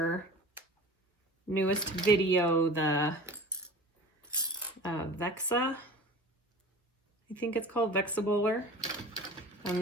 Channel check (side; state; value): both; normal; correlation 0.39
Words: newest video, the Vexa, I think it's called Vexa Bowler. And